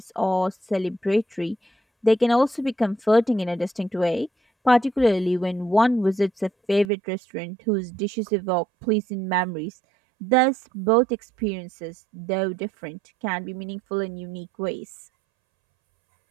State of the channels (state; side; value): drops out; left; at 6.9 s